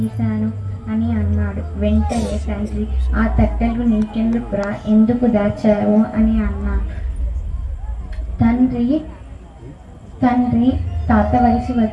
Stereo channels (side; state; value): both; identical; correlation 1.00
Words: అని అన్నాడు. వెంటనే తండ్రి, ఆ తట్టలు నీకెందుకురా, ఎందుకు దాచావు అని అన్నాడు. తండ్రి తాత వయసు